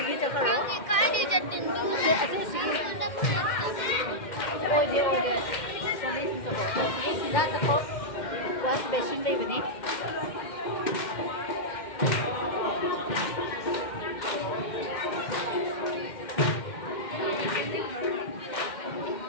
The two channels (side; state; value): right; late; 2.1 ms